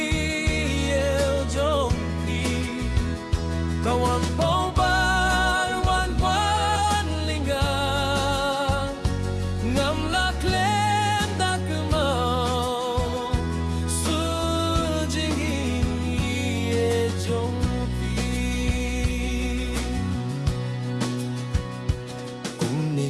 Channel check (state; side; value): identical; both; correlation 1.00